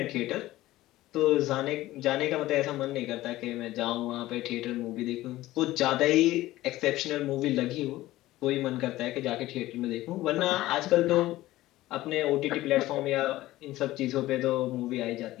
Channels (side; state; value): right; quieter; 16.4 dB